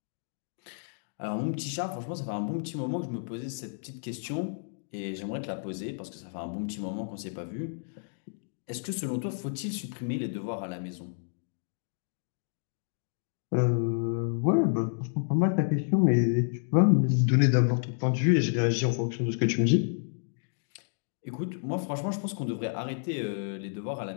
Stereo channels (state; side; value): silent; right; digital silence